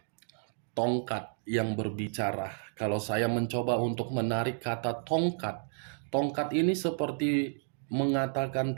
tongkat yang berbicara. Kalau saya mencoba untuk menarik kata tongkat, tongkat ini seperti mengatakan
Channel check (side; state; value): left; silent; digital silence